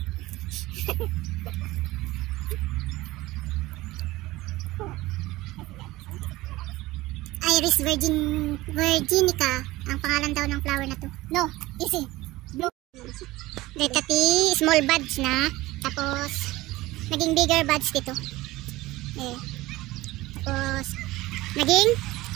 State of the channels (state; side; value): quieter; left; 18.7 dB